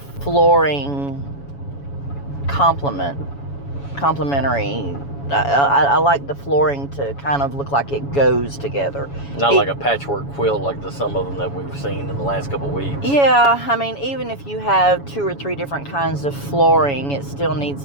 flooring complementary. I like the flooring to kind of look like it goes together. Not like a patchwork quilt like some of them that we've seen in the last couple of weeks. Yeah, I mean, even if you have 2 or 3 different kinds of flooring, it still needs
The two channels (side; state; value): right; late; 7.1 ms